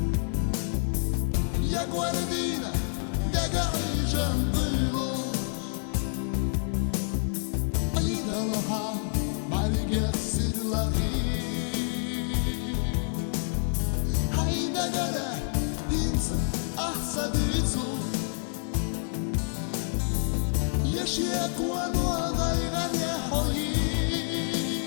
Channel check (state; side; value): silent; right; digital silence